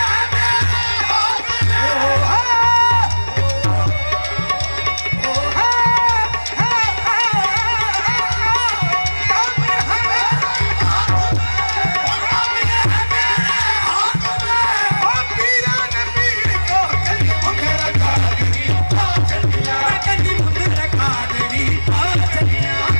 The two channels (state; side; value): inverted; both; correlation -1.00